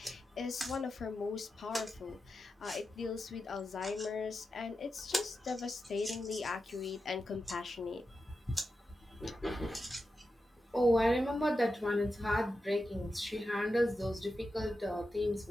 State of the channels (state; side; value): normal; both; correlation 0.90